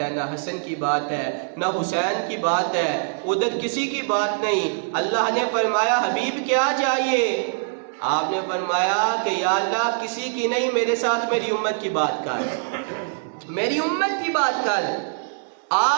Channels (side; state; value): left; silent; digital silence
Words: نہ حسن کی بات ہے، نہ حسین کی بات ہے، ادھر کسی کی بات نہیں۔ اللہ نے فرمایا حبیب کیا چاہیے؟ آپ نے فرمایا کہ یا اللہ کسی کی نہیں، میرے ساتھ میری امت کی بات کر، میری امت کی بات کر،